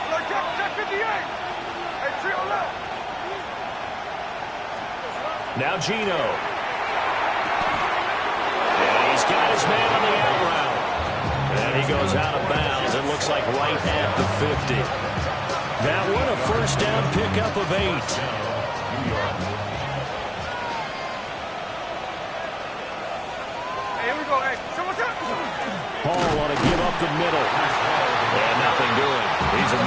Now Gino. And he's got his man on the out route. And he goes out of bounds. It looks like right at the 50. That one a first down pickup of 8. Hey, here we go. Hey, so what's up? Hall want to give up the middle. And nothing doing. He's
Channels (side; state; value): both; identical; correlation 1.00